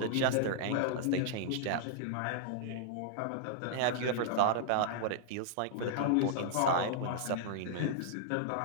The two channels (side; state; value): both; different; correlation -0.01